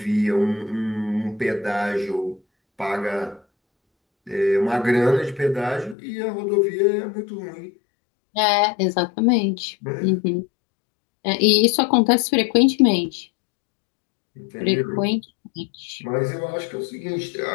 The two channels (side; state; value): right; drops out; at 6.0 s